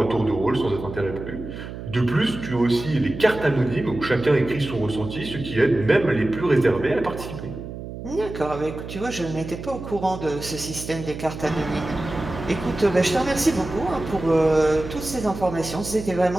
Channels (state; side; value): noise; right; hum, 10 dB below the sound